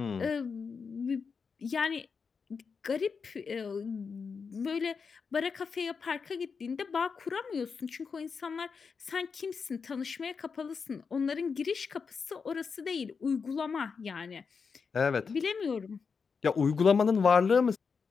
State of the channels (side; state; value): right; quieter; 5.5 dB